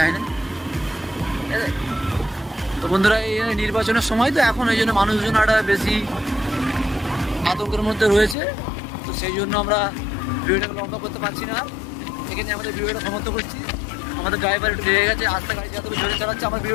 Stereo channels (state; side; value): drops out; right; at 8.3 s